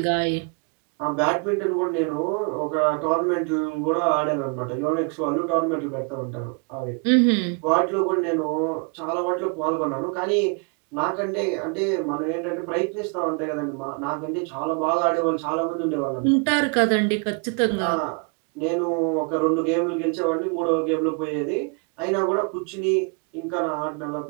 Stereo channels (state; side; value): quieter; left; 36.3 dB